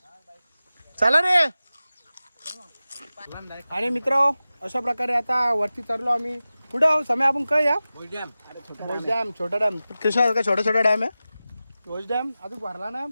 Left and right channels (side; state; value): both; inverted; correlation -0.95